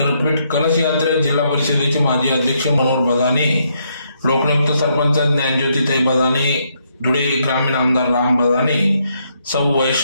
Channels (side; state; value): both; inverted; correlation -0.75